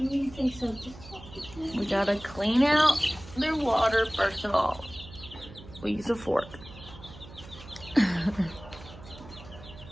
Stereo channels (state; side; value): noise; right; hum, 17 dB below the sound